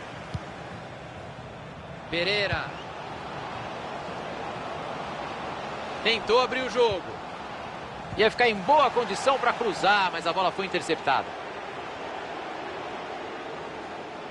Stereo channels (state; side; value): identical; both; correlation 1.00